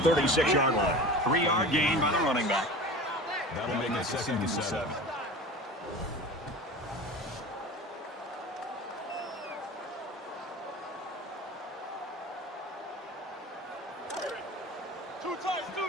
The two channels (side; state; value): both; normal; correlation 0.35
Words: line. 3-yard gain by the running back. That'll make it 2nd and 7.